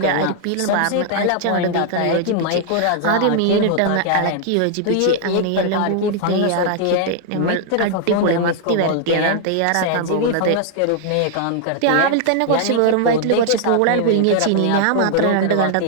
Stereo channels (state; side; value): different; both; correlation 0.00